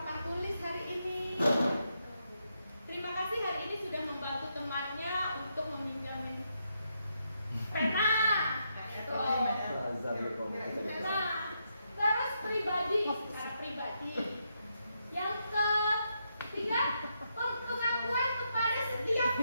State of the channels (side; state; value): both; inverted; correlation -0.81